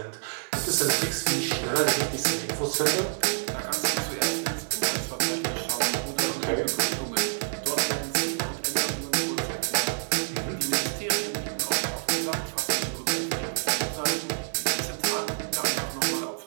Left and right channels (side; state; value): left; silent; digital silence